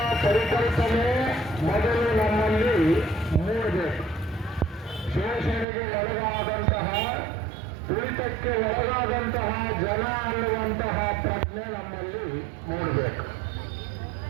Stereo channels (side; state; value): left; drops out; at 5.7 s